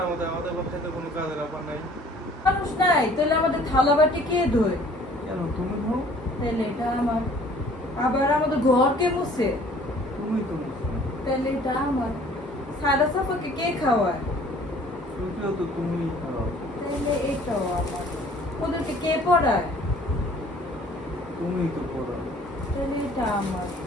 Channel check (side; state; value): both; normal; correlation 0.54